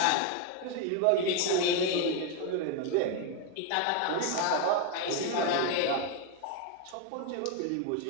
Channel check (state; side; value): different; both; correlation 0.01